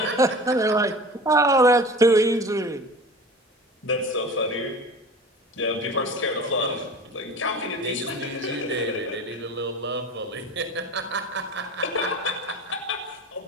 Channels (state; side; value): normal; both; correlation 0.37